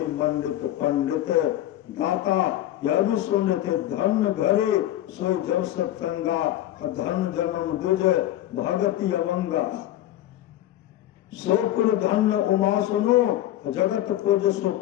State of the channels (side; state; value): right; quieter; 13.4 dB